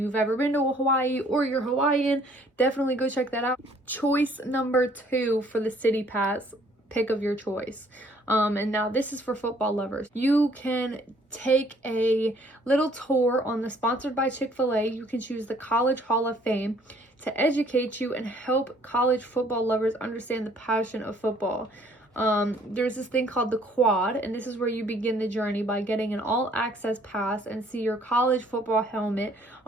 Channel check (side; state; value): both; normal; correlation 0.60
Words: ever been to Hawaii or you're Hawaiian, definitely go check that out. Choice number 2 for the city pass, pick of your choice. And now this is for football lovers. You can take a little tour on the Sponsored by Chick-fil-A. You can choose the College Hall of Fame to educate you and help college football lovers understand the passion of football. There's this thing called the Quad, and this is where you begin the journey by getting an all-access pass and see your college football helmet